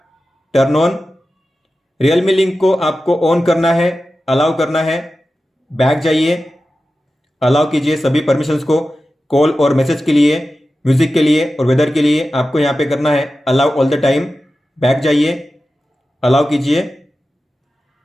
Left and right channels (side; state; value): both; normal; correlation 0.93